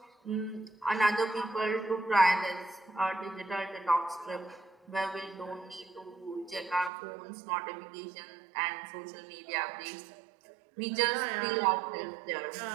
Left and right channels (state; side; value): drops out; left; at 6.9 s